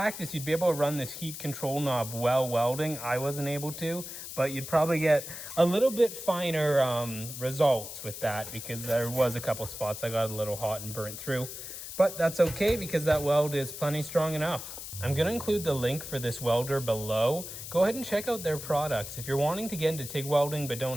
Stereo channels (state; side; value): noise; left; hiss, 9 dB below the sound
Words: you'd be able to run this heat control knob while welding. I wasn't able to, but you'd probably get a little bit finer results with that, because there was a couple spots I got a little hot and burnt through. But that's okay, because that weld is plenty strong enough. I'm going to include the link for this welder below. Go ahead and check out their products. If you're wanting to get into TIG welding but